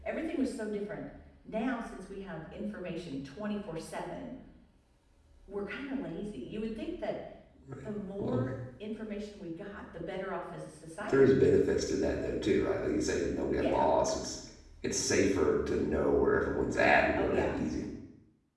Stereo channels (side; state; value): both; identical; correlation 1.00